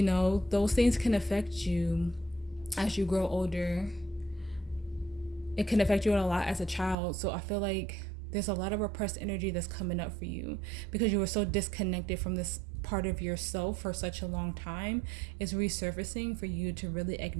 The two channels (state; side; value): drops out; left; at 7.0 s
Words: know, those things can affect you as you grow older. It can affect you a lot as a child. So I feel like there's a lot of repressed energy that's coming up for you because you were so disconnected from this part of yourself for such a long time. It's resurfacing for you to really